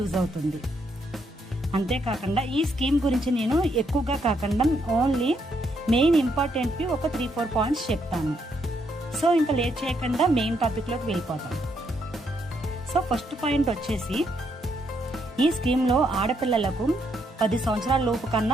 అవుతుంది. అంతేకాకుండా ఈ స్కీమ్ గురించి నేను ఎక్కువగా కాకుండా ఓన్లీ మెయిన్ ఇంపార్టెంట్వి ఒక 3-4 పాయింట్స్ చెప్తాను. సో ఇంకా లేట్ చేయకుండా మెయిన్ టాపిక్లోకి వెళ్ళిపోతాం. సో ఫస్ట్ పాయింట్ వచ్చేసి, ఈ స్కీమ్లో ఆడపిల్లలకు 10 సంవత్సరాల లోపు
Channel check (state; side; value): normal; both; correlation 0.75